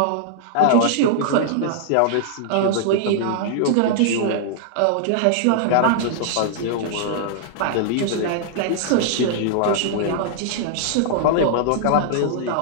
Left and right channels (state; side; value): different; both; correlation -0.01